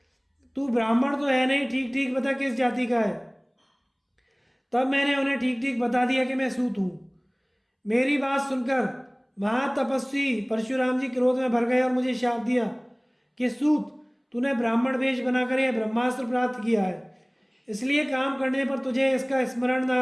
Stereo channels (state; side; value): identical; both; correlation 1.00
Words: तू ब्राह्मण तो है नहीं, ठीक ठीक बता किस जाति का है। तब मैंने उन्हें ठीक ठीक बता दिया कि मैं सूत हूँ। मेरी बात सुनकर महातपस्वी परशुराम जी क्रोध में भर गए और मुझे शाप दिया कि सूत, तूने ब्राह्मण वेश बनाकर यह ब्रह्मास्त्र प्राप्त किया है, इसलिए काम करने पर तुझे इसका स्मरण ना